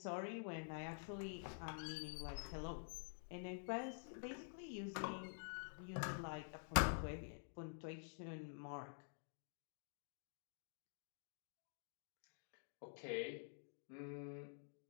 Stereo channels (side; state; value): right; silent; digital silence